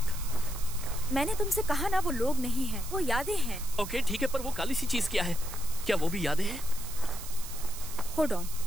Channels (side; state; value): right; noise; hiss, 12 dB below the sound